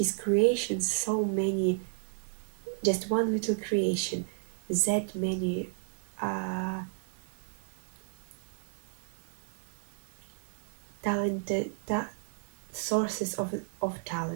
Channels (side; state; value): left; silent; digital silence